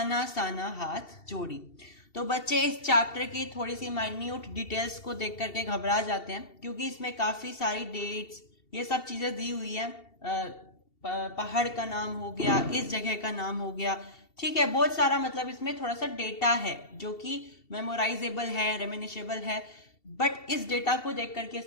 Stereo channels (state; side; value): late; right; 2.7 ms